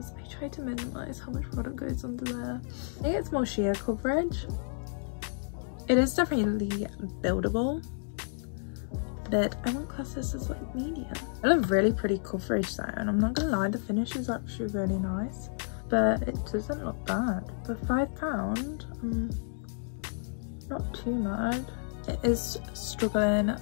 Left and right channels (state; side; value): silent; right; digital silence